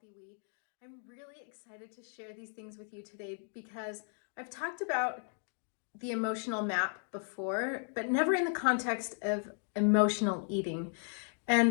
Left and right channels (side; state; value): right; silent; 54 dB below the other